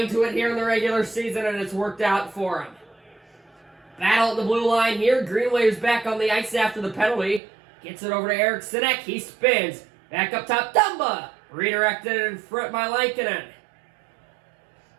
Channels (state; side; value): drops out; left; at 7.4 s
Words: to it here in the regular season, and it's worked out for them. Battle at the blue line here. Greenway is back on the ice after the penalty. Gets it over to Eric Sinek. He spins. Back up top, Dumba. Redirected in front by Lankinen.